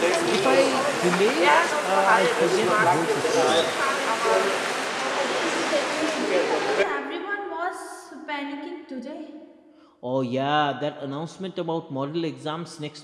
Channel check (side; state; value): both; identical; correlation 1.00